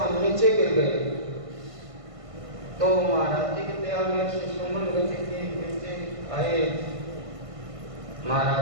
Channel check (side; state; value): left; late; 1.5 ms